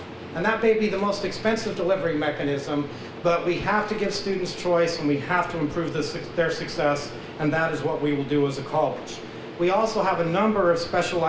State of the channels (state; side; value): identical; both; correlation 1.00